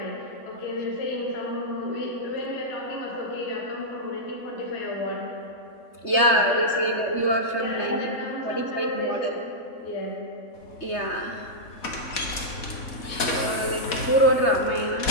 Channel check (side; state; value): right; late; 4.1 ms